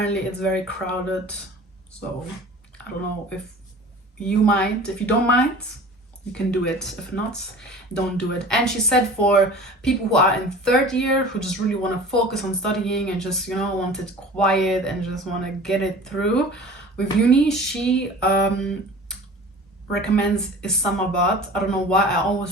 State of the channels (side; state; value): both; normal; correlation 0.41